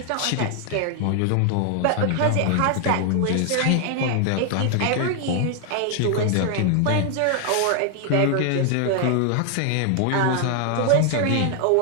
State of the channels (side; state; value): both; different; correlation 0.00